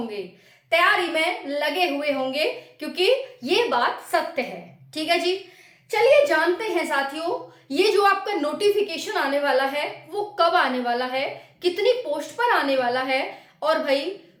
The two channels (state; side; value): identical; both; correlation 1.00